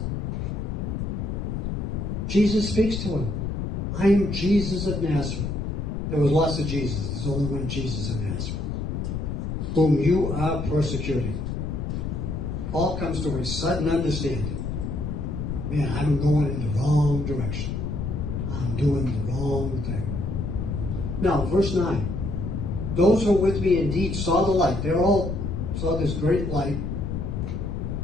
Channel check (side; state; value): left; noise; rumble, 3 dB below the sound